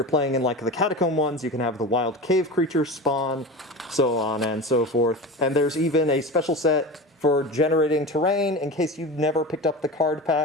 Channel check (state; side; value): normal; both; correlation 0.29